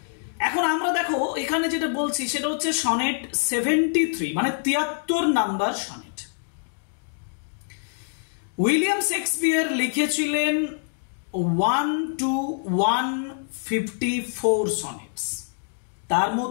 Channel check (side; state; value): right; silent; digital silence